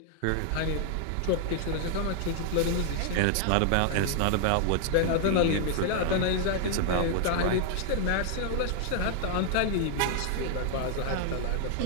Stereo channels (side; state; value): both; different; correlation 0.00